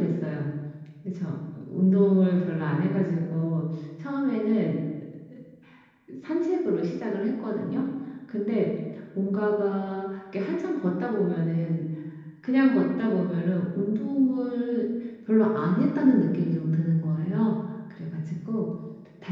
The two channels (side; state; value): both; identical; correlation 1.00